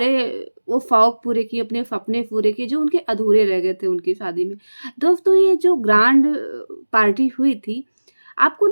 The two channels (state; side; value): inverted; both; correlation -1.00